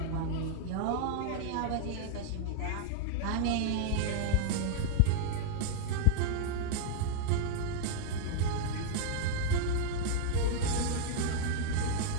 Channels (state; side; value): different; both; correlation 0.00